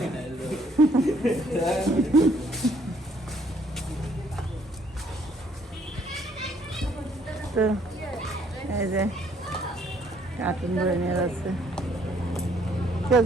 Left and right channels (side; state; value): both; normal; correlation 0.65